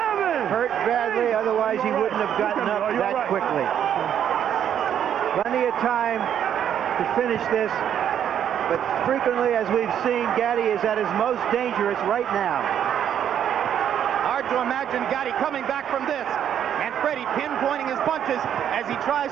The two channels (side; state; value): left; quieter; 9.5 dB